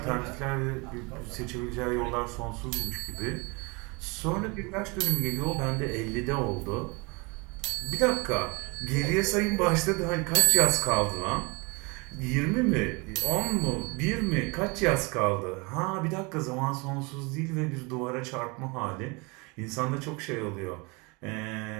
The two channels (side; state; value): left; quieter; 28.3 dB